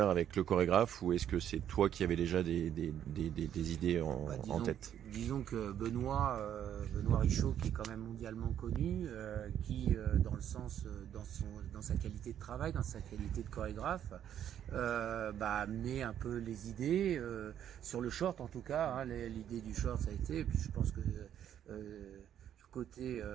avec le chorégraphe, ou est-ce que c'est toi qui avais déjà des idées en tête? Disons que Benoît Richaud, qui est quand même mondialement connu, qui dans sa qualité de travail, dans sa qualité de chorégraphe, met un peu les idées sur le short en tout cas, hein, l'idée du short ça a été, et puis je pense que côté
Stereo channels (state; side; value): quieter; left; 10.1 dB